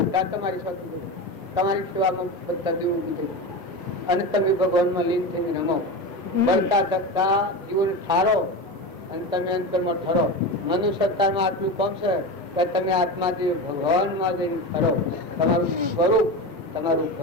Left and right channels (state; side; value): normal; both; correlation 0.23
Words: તમારી સાથે તમારી સેવામાં બધા દેવો કીધું અને તમે ભગવાનમાં લીન થઈને રમો. બળતા ધકતા જીવન ઠારો અને તમે અંતરમાં ઠરો. મનુષ્ય અવતારમાં આટલું કામ છે કે તમે આત્માથી ભગવાનમાં જઈને ઠરો. તમારું સ્વરૂપ, તમારું